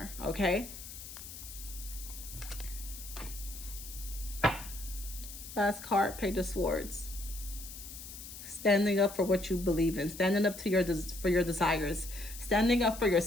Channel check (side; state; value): left; noise; hiss, 12 dB below the sound